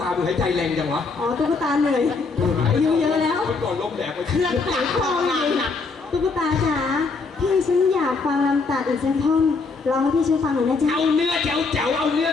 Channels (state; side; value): quieter; right; 4.3 dB